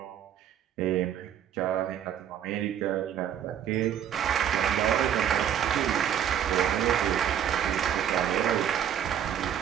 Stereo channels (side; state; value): left; quieter; 9.6 dB